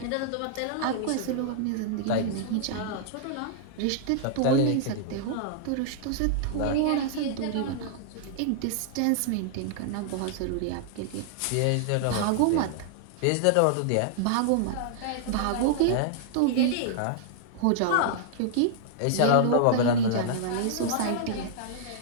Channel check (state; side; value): different; both; correlation -0.01